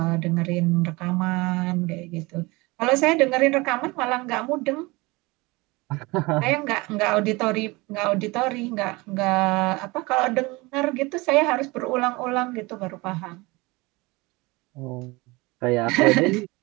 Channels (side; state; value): left; quieter; 23.8 dB